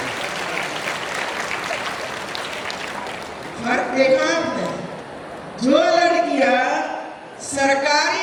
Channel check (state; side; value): identical; both; correlation 1.00